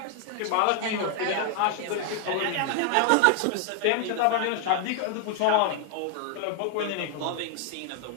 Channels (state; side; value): different; both; correlation 0.00